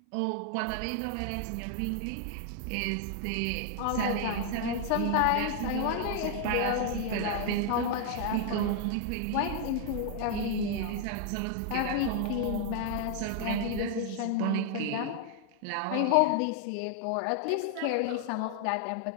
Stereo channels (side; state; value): both; different; correlation 0.00